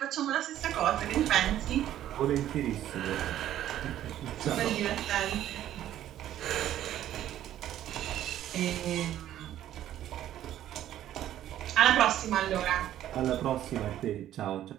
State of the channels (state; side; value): quieter; left; 12.2 dB